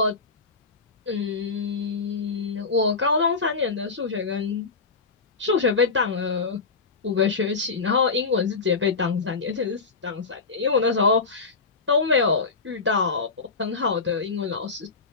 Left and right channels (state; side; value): quieter; right; 4.4 dB